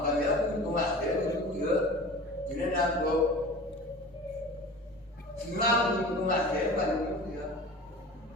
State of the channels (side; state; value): both; normal; correlation 0.38